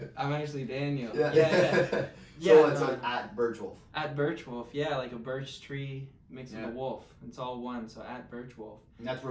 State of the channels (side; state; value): both; identical; correlation 1.00